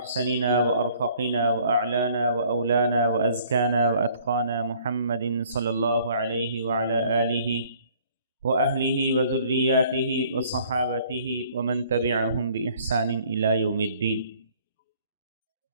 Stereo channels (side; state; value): both; inverted; correlation -0.58